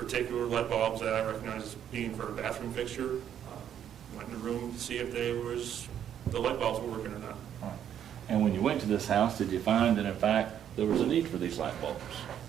light bulbs that I recognized as being for a bathroom fixture. Went in the room to see if the light bulbs were working or not. All right. And when you went to this house, did you find that in fact there was a need for these light bulbs?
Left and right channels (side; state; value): left; quieter; 9.7 dB